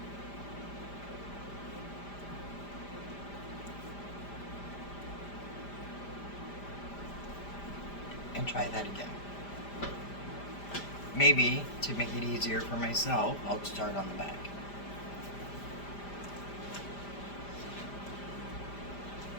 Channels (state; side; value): late; right; 5.0 ms